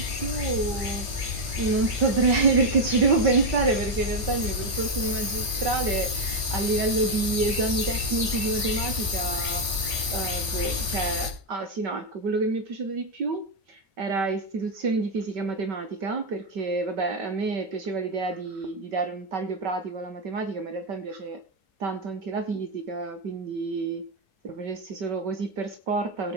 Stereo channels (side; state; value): left; late; 1.5 ms